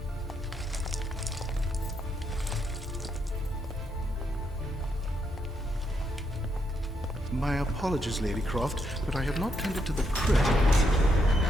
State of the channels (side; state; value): both; normal; correlation 0.79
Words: My apologies, Lady Croft, but I have not tended to the crypt.